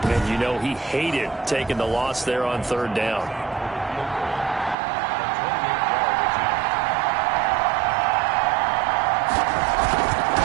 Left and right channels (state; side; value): drops out; left; at 4.8 s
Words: you know he hated taking the loss there on 3rd down.